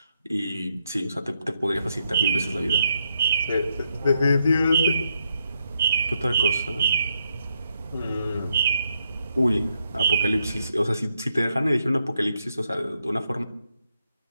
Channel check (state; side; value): inverted; both; correlation -0.80